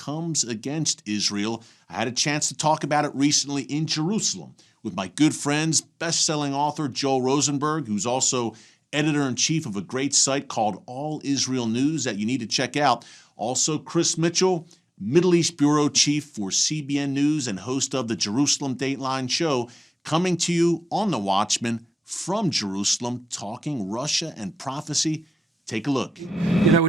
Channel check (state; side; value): normal; both; correlation 0.96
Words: against Israel. I had a chance to talk about it recently in Jerusalem with my good friends, best-selling author Joel Rosenberg, who's also editor-in-chief of a great site called All Israel News that you need to check out. Also, Chris Mitchell, Middle East Bureau Chief for CBN News and host of the Jerusalem Dateline show, coming to you on The Watchman from Jerusalem, talking Russia and prophecy. Take a look. You know, we're